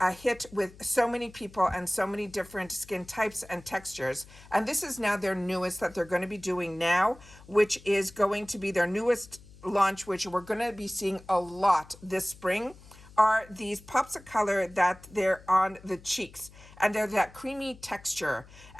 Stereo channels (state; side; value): noise; left; hum, 22 dB below the sound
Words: hit with so many people and so many different skin types and textures. And this is now their newest that they're going to be doing now, which is going to be their newest launch, which we're going to be seeing a lot this spring, are these pops of color that they're on the cheeks, and they're that creamy texture.